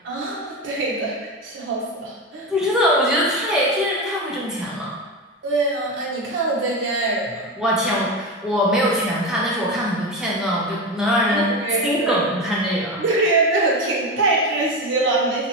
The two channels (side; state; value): both; normal; correlation 0.19